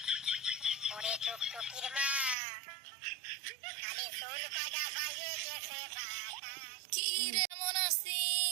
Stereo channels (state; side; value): drops out; left; at 2.4 s